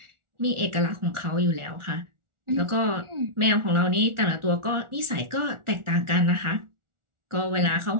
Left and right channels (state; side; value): late; left; 1.4 ms